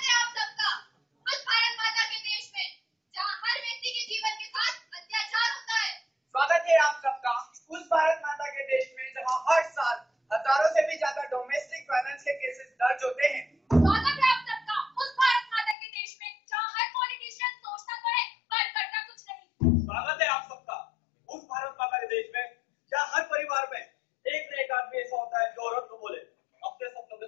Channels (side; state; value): right; drops out; at 15.8 s